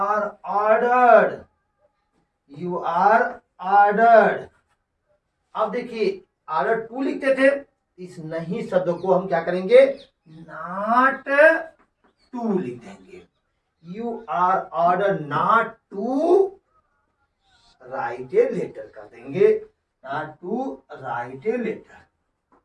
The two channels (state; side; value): identical; both; correlation 1.00